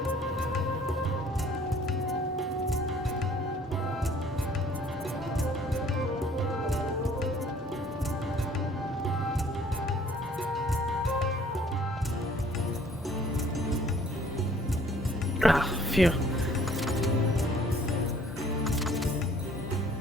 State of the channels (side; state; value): both; normal; correlation 0.56